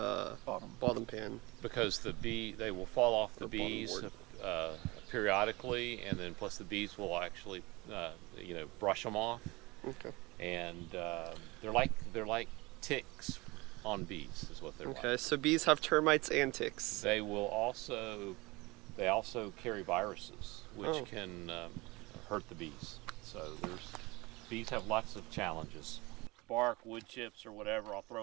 bottom pan? Because they will fall off the The bottom bees board. periodically, and then plus the bees will actually brush them off, Okay. and they're like ticks on bees is what they're Okay, like. so bees have termites and ticks. They also carry viruses which Oh. can hurt the bees. So bees have lots of challenges. Bark, wood chips, or whatever I'll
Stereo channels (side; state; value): left; quieter; 23.3 dB